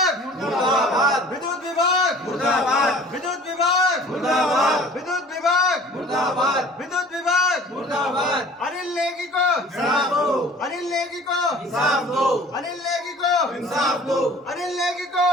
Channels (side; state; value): both; normal; correlation 0.48